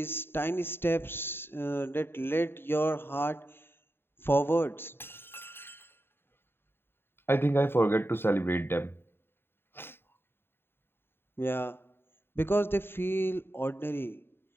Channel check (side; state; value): right; late; 0.11 ms